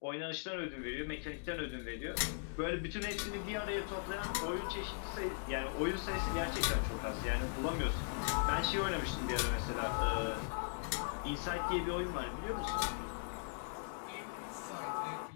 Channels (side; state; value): right; silent; digital silence